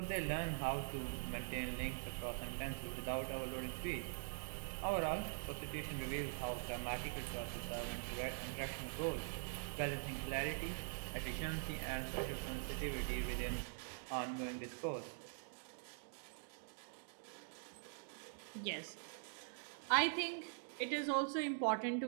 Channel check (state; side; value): silent; left; digital silence